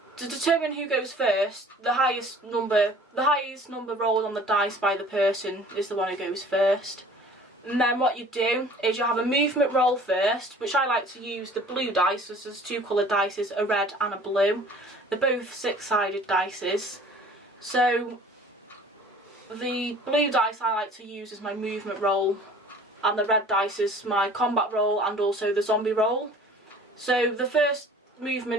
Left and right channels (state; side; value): normal; both; correlation 0.48